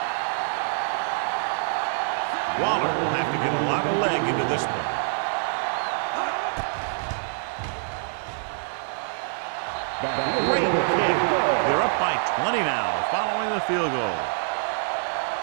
Waller will have to get a lot of leg into this one. Great kick. They're up by 20 now following the field goal.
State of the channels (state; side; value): silent; left; digital silence